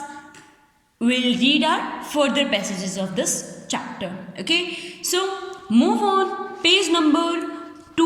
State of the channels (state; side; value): identical; both; correlation 1.00